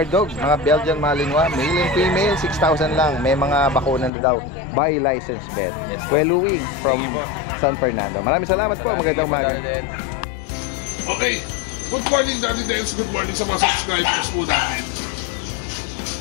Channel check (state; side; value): drops out; right; at 4.1 s